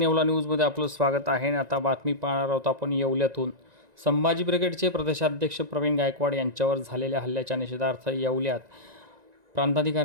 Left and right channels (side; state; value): left; late; 1.9 ms